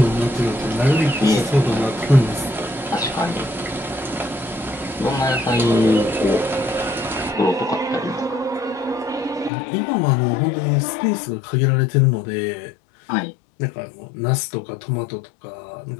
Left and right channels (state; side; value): drops out; right; at 9.5 s